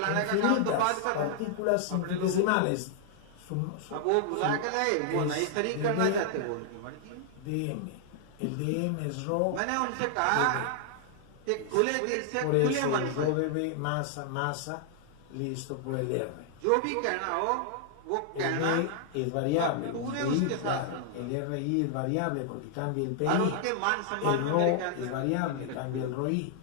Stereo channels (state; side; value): different; both; correlation 0.00